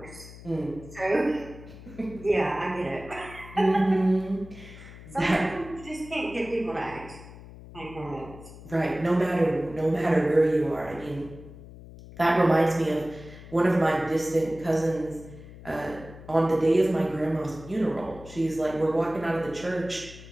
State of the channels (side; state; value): left; noise; hum, 17 dB below the sound